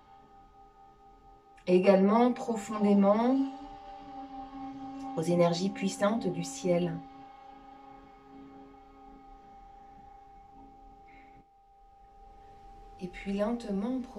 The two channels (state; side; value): identical; both; correlation 1.00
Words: et également profondément aux énergies puissantes du ciel. Et puis lentement,